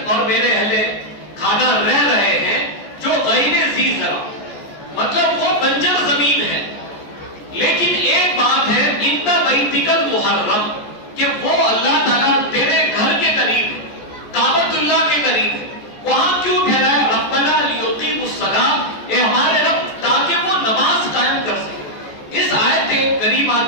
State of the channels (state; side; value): late; right; 14 ms